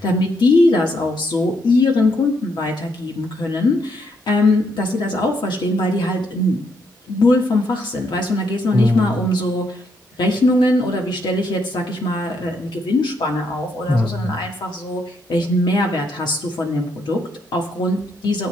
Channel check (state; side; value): normal; both; correlation 0.75